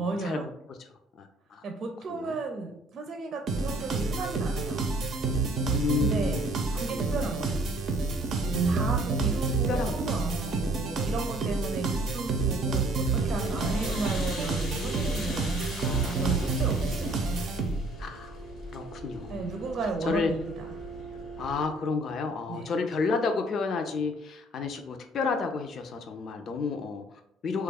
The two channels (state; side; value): normal; both; correlation 0.58